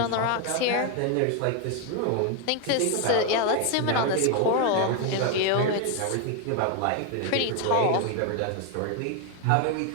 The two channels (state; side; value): different; both; correlation 0.01